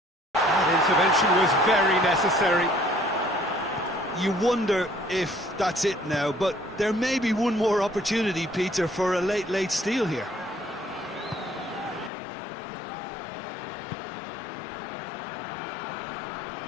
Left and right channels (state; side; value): drops out; right; at 12.1 s